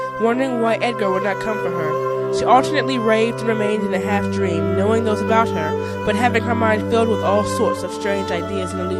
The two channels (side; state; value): both; identical; correlation 1.00